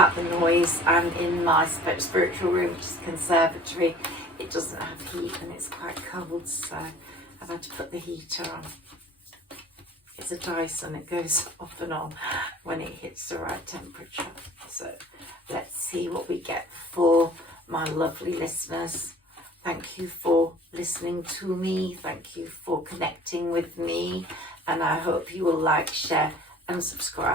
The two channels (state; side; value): normal; both; correlation 0.48